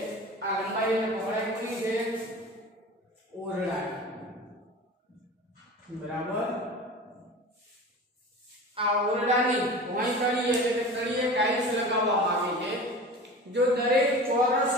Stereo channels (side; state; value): both; normal; correlation 0.35